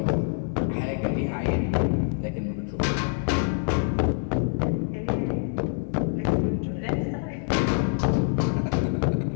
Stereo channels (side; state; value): right; silent; 57 dB below the other